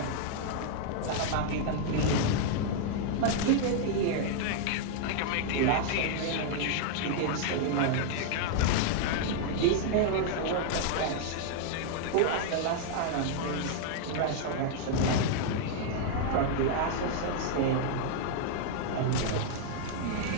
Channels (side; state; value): both; different; correlation 0.00